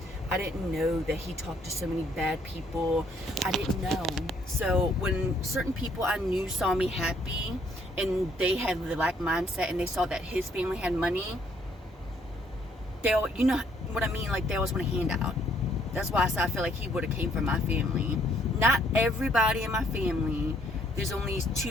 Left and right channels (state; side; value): normal; both; correlation 0.66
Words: I didn't know that he talked to so many bad people. I didn't know. So when certain people I knew saw me happy and they had the lack mindset and they saw that his family had money, they all, you know what I mean? Like, they always want a handout. That's why I feel like he would have came from my family. Not everybody in my family. There's only